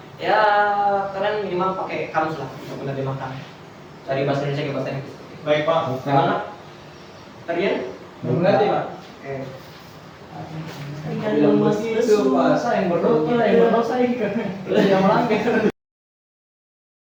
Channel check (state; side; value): identical; both; correlation 1.00